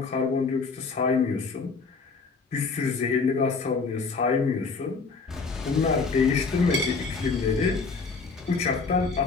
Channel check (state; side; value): quieter; right; 4.5 dB